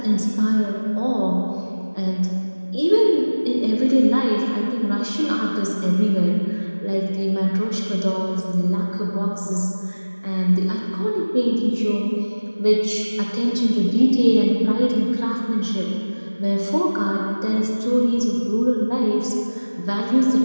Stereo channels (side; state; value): both; inverted; correlation -1.00